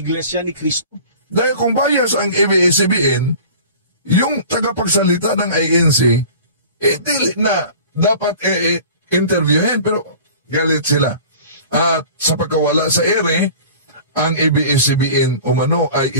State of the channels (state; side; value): inverted; both; correlation -0.42